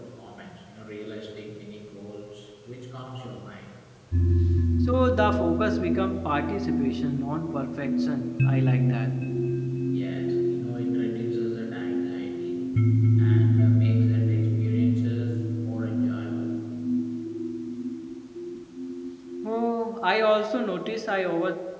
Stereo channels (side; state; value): both; identical; correlation 1.00